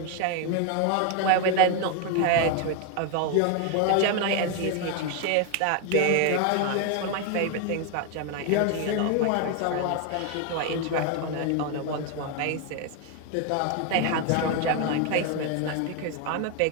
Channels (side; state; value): both; different; correlation 0.01